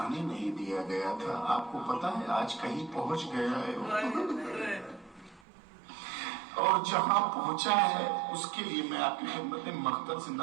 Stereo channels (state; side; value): drops out; left; at 5.4 s